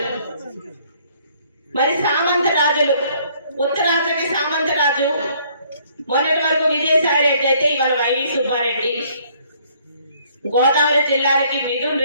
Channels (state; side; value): inverted; both; correlation -0.63